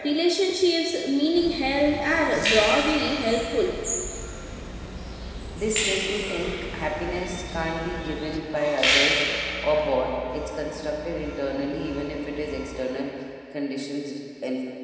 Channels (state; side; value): identical; both; correlation 1.00